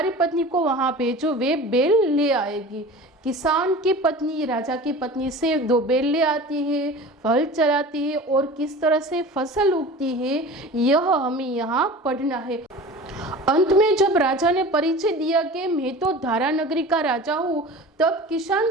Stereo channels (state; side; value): normal; both; correlation 0.37